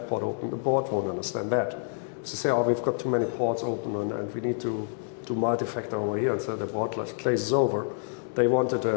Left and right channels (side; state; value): right; silent; digital silence